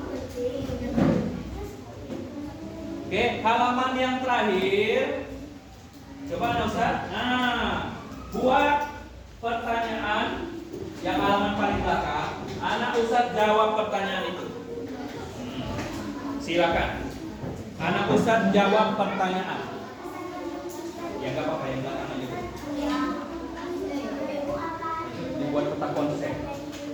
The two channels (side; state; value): both; identical; correlation 1.00